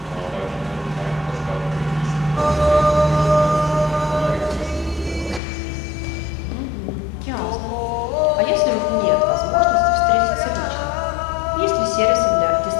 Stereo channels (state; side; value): drops out; right; at 5.4 s